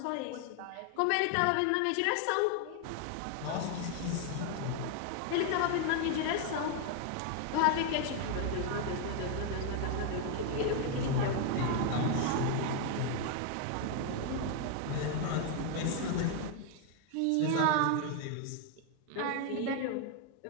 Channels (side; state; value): both; different; correlation 0.01